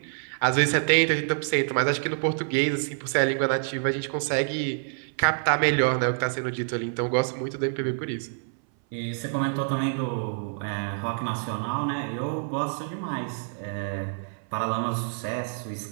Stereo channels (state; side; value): silent; left; 60 dB below the other